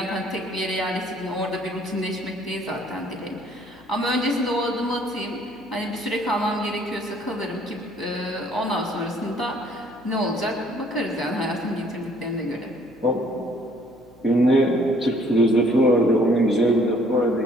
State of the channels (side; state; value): left; noise; hum, 28 dB below the sound